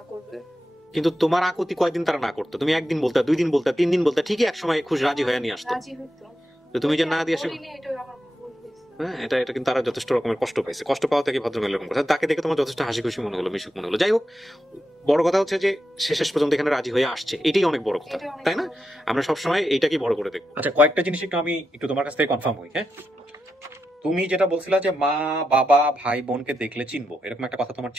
করবে। কিন্তু তোমার আকুতি কয়দিন তারা না করতো? তুমি একদিন বলতে, 2 দিন বলতে, 3 দিন বলতে, ঠিকই এক সময় খুশি রাজি হয়ে নিয়ে আসতো। তো তুমি যে না দিয়ে আসো, হ্যাঁ, এটা কিন্তু তারা যথেষ্ট রকমের কষ্ট পাইছে। কষ্ট পাওয়া থেকে ভদ্রমহিলা এরকম কথা, তাকে দেখে তোমার যথেষ্ট হাসি খুশি মনে হলো, মিশুক মনে হলো। যাই হোক, বড় কথা হচ্ছে যে শেষ পর্যন্ত এখানে রাজি হয়ে আসছে, এটাই অনেক বড় কথা, তাই না? আমরা সবসময় এইটাকে বড় করে দেখবো। আচ্ছা, কয়েকটা জিনিস আমি একটু তোমার কাছ থেকে কনফার্ম হই। হ্যাঁ, তুমি যেটা বলছিলা যে মা বাবা ভাই বোনকে দেখলে চিনবো, এরকম একটা কথা তোমার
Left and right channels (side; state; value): both; normal; correlation 0.87